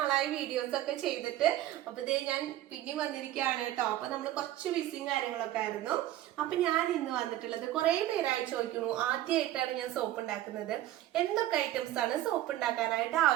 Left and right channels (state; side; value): quieter; left; 13.9 dB